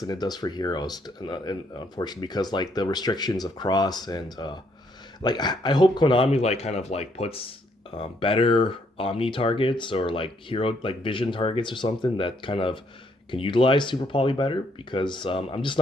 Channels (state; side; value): normal; both; correlation 0.71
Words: than it does for heroes, and unfortunately, because like the restrictions of cross and like I hope Konami like kind of like puts better Omni targets or like hero like vision targets or something that kind of can utilize Super Poly better because I'm just